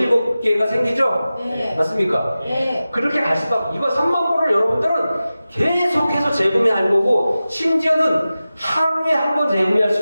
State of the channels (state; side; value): inverted; both; correlation -0.95